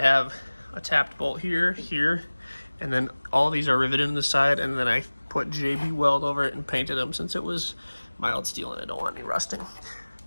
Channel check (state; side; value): inverted; both; correlation -1.00